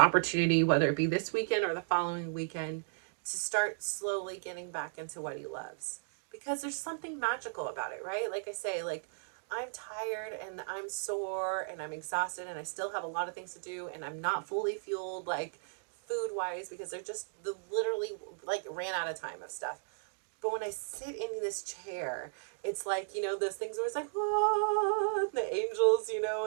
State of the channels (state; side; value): silent; left; digital silence